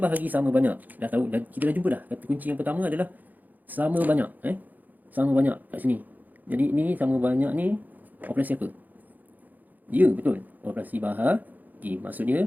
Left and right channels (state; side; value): late; left; 0.083 ms